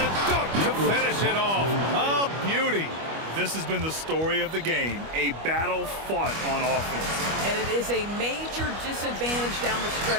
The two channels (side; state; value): left; late; 25 ms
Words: dunk to finish it off. A beauty. This has been the story of the game, a battle fought on offense. And it is a major disadvantage down the